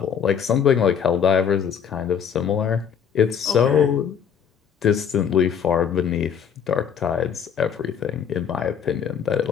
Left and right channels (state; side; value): quieter; right; 7.7 dB